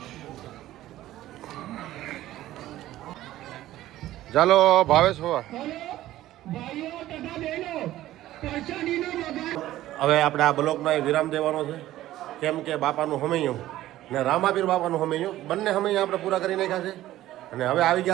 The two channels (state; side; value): quieter; left; 14.6 dB